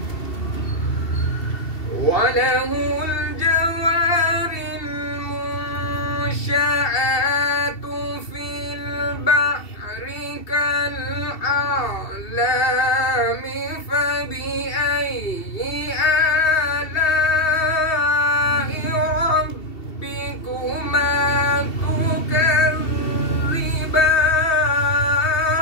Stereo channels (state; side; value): late; right; 2.7 ms